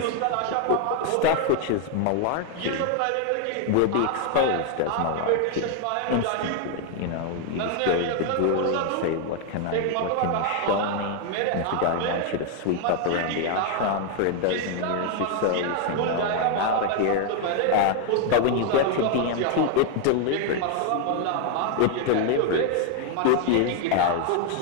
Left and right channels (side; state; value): both; different; correlation 0.00